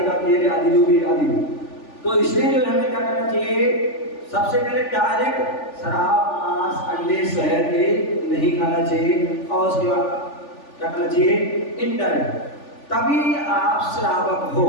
तेल आदि जो भी आदि। तो इसलिए जो हमें क्या करना चाहिए? सबसे पहले डायरेक्ट शराब, मांस, अंडे, शहद ये नहीं खाना चाहिए। और उसके बाद क्या करना चाहिए? इनडायरेक्ट, तभी आप श्रावक हो।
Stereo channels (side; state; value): right; late; 3.4 ms